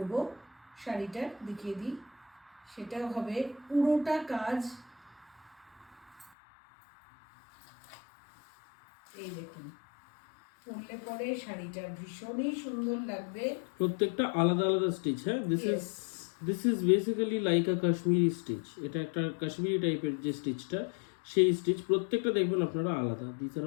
শাড়িটা দেখিয়ে দিই, সেটাও হবে পুরোটা কাজ। এই দেখুন, পরলে পরে শাড়িটা ভীষণই সুন্দর লাগবে। প্রত্যেকটা আলাদা আলাদা স্টিচ। হ্যাঁ, this is basically like a Kashmiri stitch. এটা একটা কাশ্মীরি টাইপের যে স্টিচটা, সেই স্টিচ প্রত্যেকটা দেখবেন আপনারা আলাদা। This are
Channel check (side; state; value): right; drops out; at 6.3 s